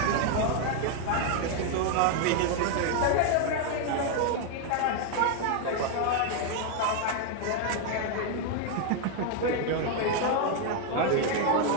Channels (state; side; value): different; both; correlation 0.00